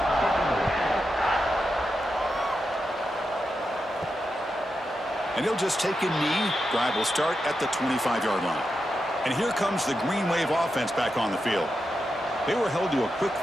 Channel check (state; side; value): normal; both; correlation 0.88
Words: And he'll just take a knee. Drive will start at the 25-yard line. And here comes the Green Wave offense back on the field. They were held to a quick